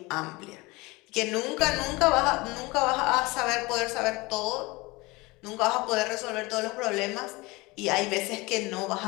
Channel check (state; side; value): quieter; right; 23.2 dB